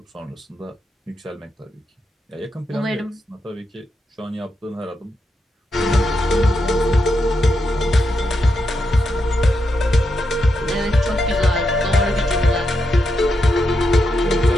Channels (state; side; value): normal; both; correlation 0.84